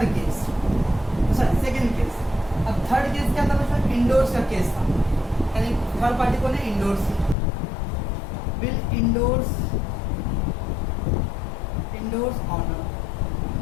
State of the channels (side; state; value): right; drops out; at 7.4 s